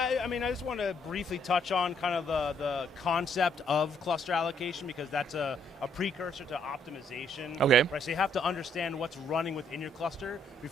I mean, I just want to briefly touch on kind of the concept of cluster allocation because that's a precursor to optimization. Okay. Right, so you have to understand what's running within your cluster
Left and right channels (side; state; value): both; normal; correlation 0.69